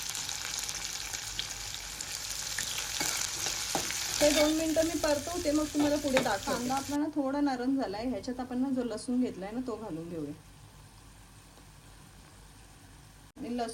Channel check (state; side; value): identical; both; correlation 1.00